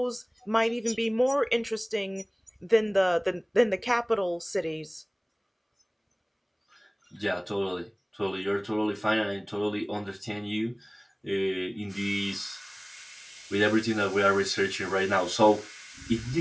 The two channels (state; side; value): identical; both; correlation 1.00